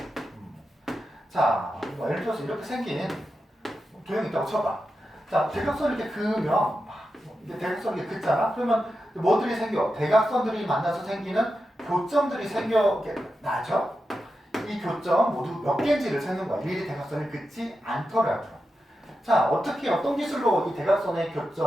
자, 예를 들어서 이렇게 생긴 도형이 있다고 쳐봐. 자, 대각선 이렇게 그으면 이게 대각선 이렇게 긋잖아. 그러면 뭐들이 생겨? 대각선들이 만나서 생기는 교점들이 생겨나죠. 이 교점 모두 몇 개인지를 세는 거야. 일일이 대각선을 긋지 않더라도. 자, 어떻게 어떤 기술로 이 대각선의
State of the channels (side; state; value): both; normal; correlation 0.89